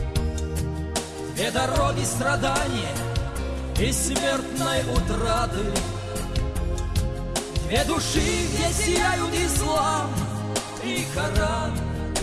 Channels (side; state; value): both; identical; correlation 1.00